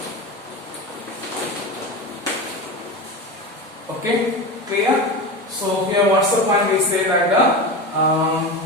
Okay, clear? So here what's the point? We say that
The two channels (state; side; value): normal; both; correlation 0.24